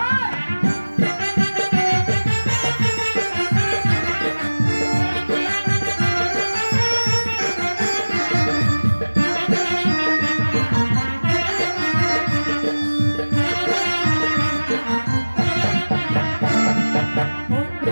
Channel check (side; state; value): both; inverted; correlation -1.00